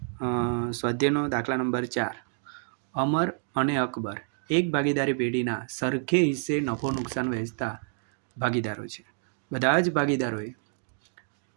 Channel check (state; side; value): silent; left; 55 dB below the other